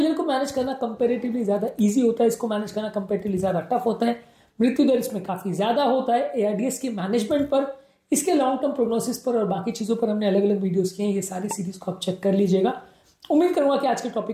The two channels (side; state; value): both; identical; correlation 1.00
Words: को मैनेज करना कंपेरेटिवली ज्यादा इजी होता है, इसको मैनेज करना कंपेरेटिवली ज्यादा टफ होता है, मृत्यु दर इसमें काफी ज्यादा होता है। एआरडीएस के मैनेजमेंट पर, इसके लॉन्ग टर्म प्रोग्नोसिस पर और बाकी चीजों पर हमने अलग अलग वीडियोस किए हैं, ये सारी सीरीज को आप चेक कर लीजिएगा। उम्मीद करूंगा कि आज के